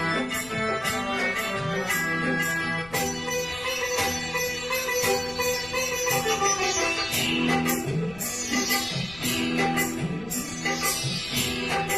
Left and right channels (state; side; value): noise; left; rumble, 19 dB below the sound